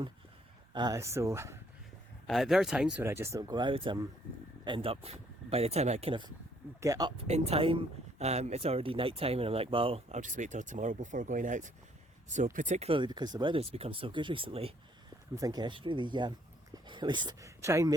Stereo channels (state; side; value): normal; both; correlation 0.65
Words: So there are times when I just don't go out. End up, by the time I kind of get up in time, it's already night time, and I'm like, well, I'll just wait till tomorrow before going out. So particularly because the weather's become so good recently, I'm thinking I should really at least try and